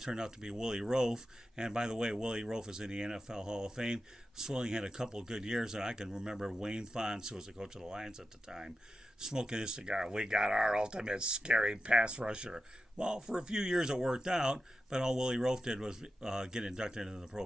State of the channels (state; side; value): normal; both; correlation 0.91